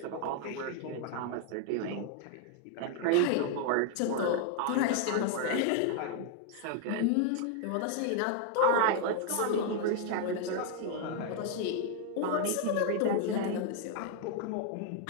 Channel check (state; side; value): different; both; correlation 0.00